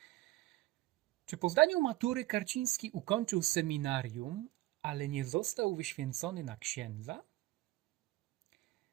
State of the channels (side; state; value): left; quieter; 17.9 dB